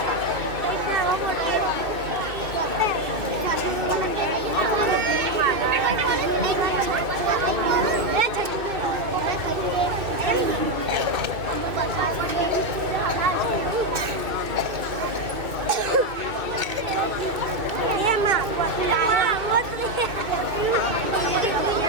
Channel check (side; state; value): left; late; 2.5 ms